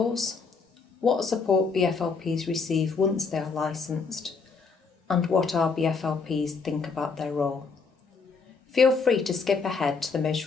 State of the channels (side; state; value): right; quieter; 4.8 dB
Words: what support BFLPs receive once they are licensed, and what our BFLPs think about their role. Feel free to skip ahead to the